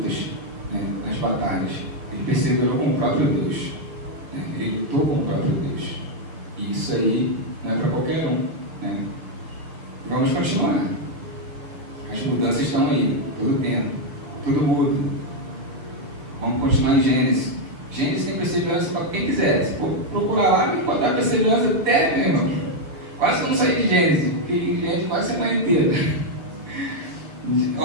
né, nas batalhas. Ele perseverou com o próprio Deus, né? Ele lutou com o próprio Deus. E isso aí não é para qualquer um, né? Vamos continuar. As mudanças estão aí, todo tempo, tudo muda. Vamos continuar em Gênesis. Gênesis tem perseverança para quem quiser. Se for procurar lá, vai encontrar perseverança até mesmo. Quase que eu não saí de Gênesis, porque Gênesis quase a semana inteira.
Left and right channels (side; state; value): left; late; 6.6 ms